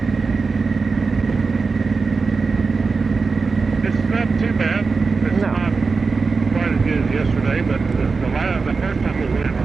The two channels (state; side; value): quieter; left; 4.5 dB